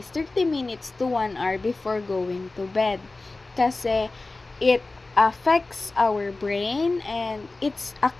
30 minutes to 1 hour before going to bed. Kasi it affects our brain and it's a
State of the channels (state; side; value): quieter; right; 3.3 dB